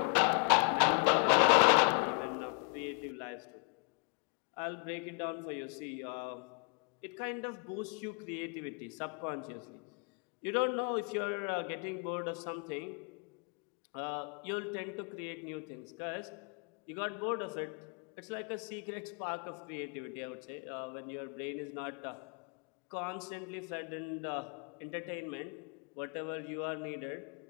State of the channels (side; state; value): right; quieter; 39.7 dB